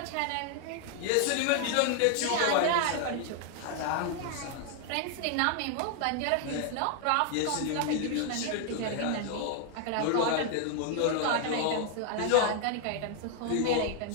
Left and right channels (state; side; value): different; both; correlation 0.00